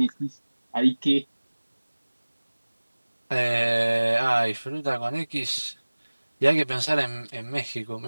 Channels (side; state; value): both; inverted; correlation -1.00